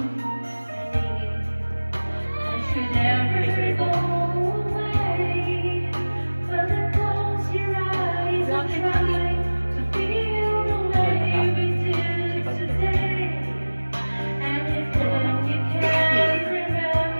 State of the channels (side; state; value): both; inverted; correlation -1.00